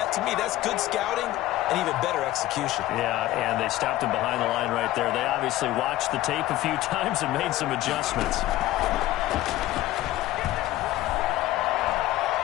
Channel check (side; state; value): right; quieter; 15.7 dB